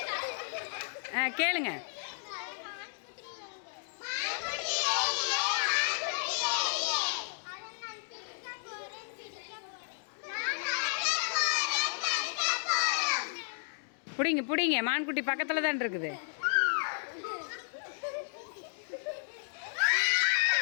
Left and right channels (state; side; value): silent; right; digital silence